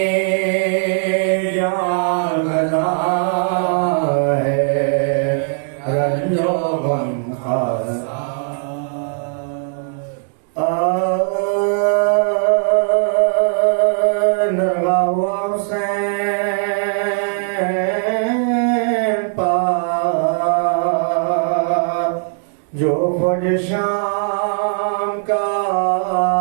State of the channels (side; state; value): left; silent; 67 dB below the other